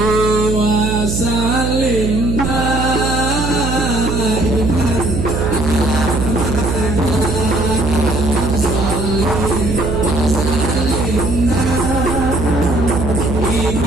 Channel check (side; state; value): right; noise; hum, 2 dB below the sound